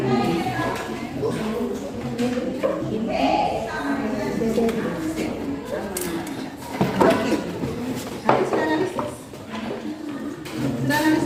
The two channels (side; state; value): both; identical; correlation 1.00